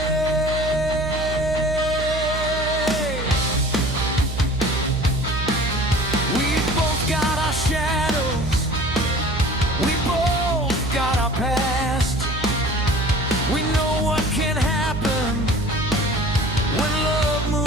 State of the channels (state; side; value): noise; right; hum, 6 dB below the sound